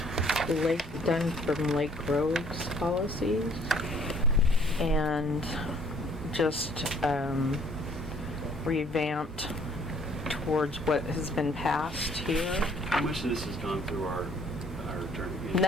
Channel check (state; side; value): normal; both; correlation 0.60